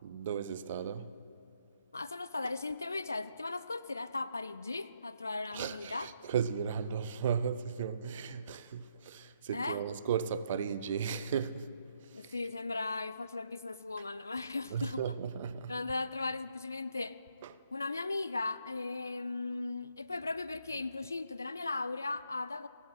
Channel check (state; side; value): inverted; both; correlation -0.74